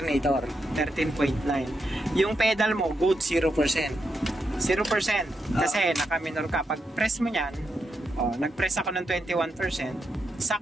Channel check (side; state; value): both; normal; correlation 0.84